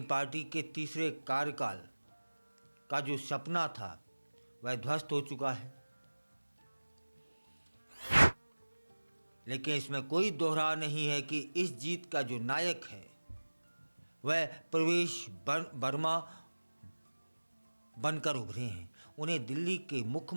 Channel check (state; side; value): inverted; both; correlation -1.00